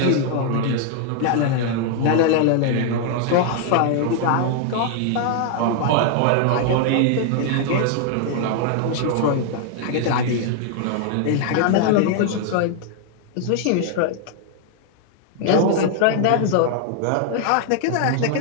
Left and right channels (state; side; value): different; both; correlation 0.00